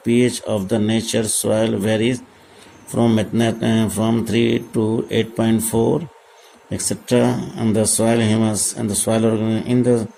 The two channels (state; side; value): identical; both; correlation 1.00